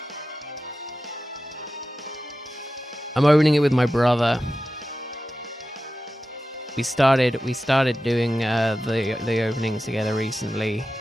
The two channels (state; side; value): normal; both; correlation 0.93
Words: I'm opening it with my brother. We started doing the openings together recently.